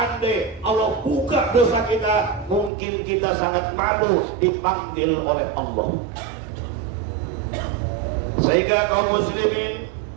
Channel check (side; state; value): left; drops out; at 2.7 s